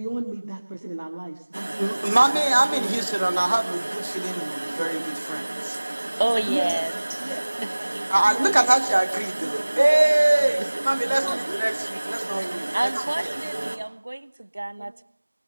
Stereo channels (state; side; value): inverted; both; correlation -1.00